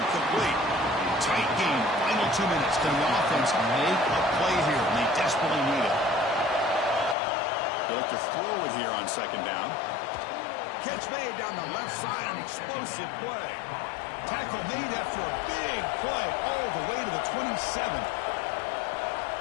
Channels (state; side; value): drops out; right; at 7.2 s